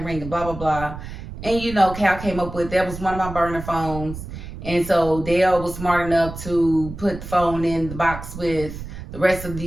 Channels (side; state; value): right; noise; rumble, 10 dB below the sound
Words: ringing, blah, blah, blah. And Cal came up with, that was one of my burner phones. And so Dale was smart enough to put the phone in the box with the rest of